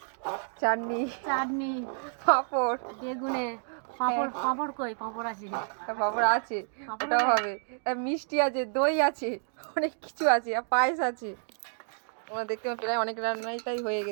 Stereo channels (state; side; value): silent; left; 58 dB below the other